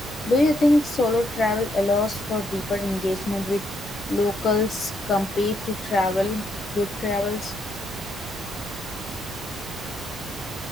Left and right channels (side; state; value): both; normal; correlation 0.76